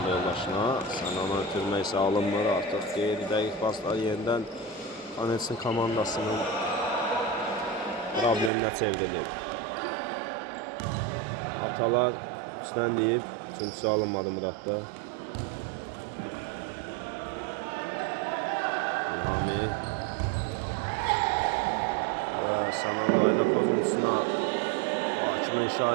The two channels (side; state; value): left; drops out; at 8.5 s